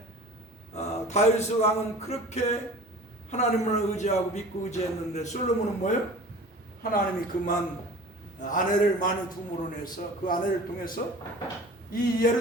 다윗 왕은 그렇게 하나님을 의지하고 믿고 의지했는데 솔로몬은 뭐예요? 하나님이 그만 아내를 많이 둠으로 내서 그 아내를 통해서 이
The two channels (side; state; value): both; normal; correlation 0.41